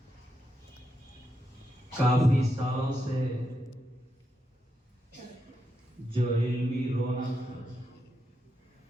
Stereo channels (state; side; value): normal; both; correlation 0.84